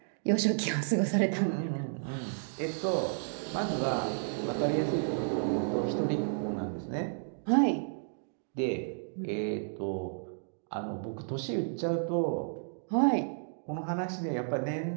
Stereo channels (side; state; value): left; silent; digital silence